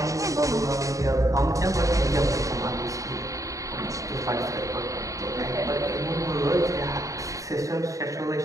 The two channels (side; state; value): left; late; 0.16 ms